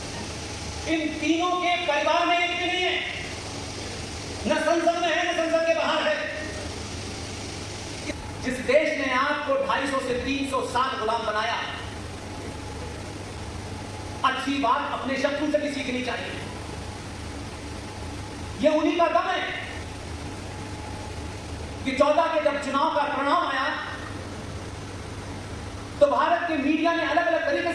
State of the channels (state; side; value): identical; both; correlation 1.00